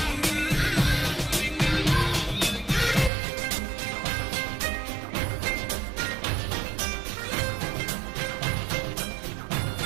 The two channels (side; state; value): left; drops out; at 3.1 s